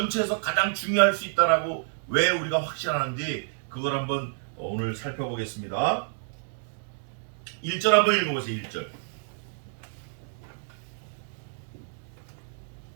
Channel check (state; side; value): silent; left; digital silence